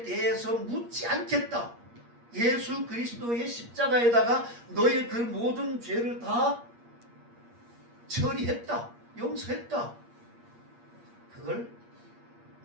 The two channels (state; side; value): late; left; 8.5 ms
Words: 대해서 묻지 않겠다. 예수 그리스도의 십자가에다가 너의 그 모든 죄를 다 처리했다. 용서했다. 그걸